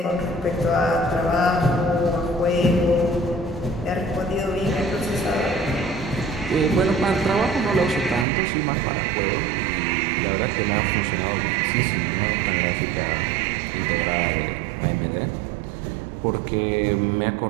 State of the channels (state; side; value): drops out; left; at 8.2 s